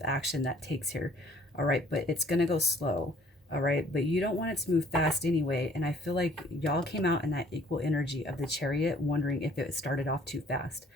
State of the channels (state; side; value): normal; both; correlation 0.57